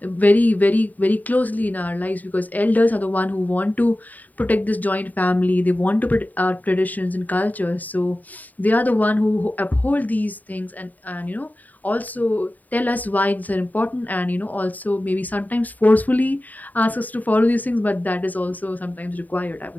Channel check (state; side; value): late; right; 0.081 ms